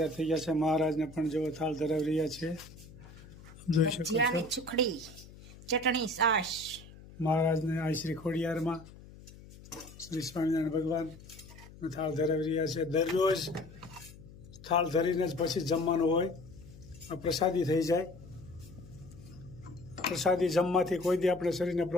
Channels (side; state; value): left; noise; hum, 19 dB below the sound